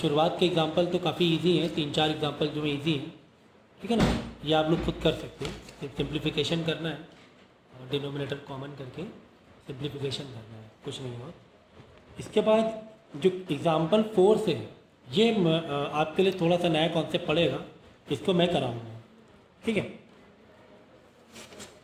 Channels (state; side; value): identical; both; correlation 1.00